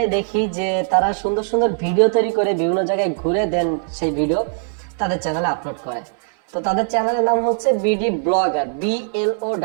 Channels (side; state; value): left; silent; 63 dB below the other